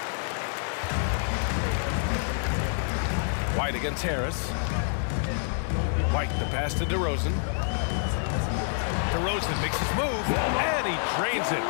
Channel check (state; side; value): silent; right; 60 dB below the other